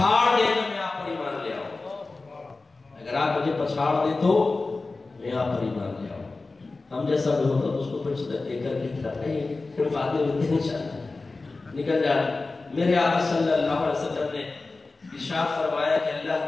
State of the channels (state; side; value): quieter; right; 3.5 dB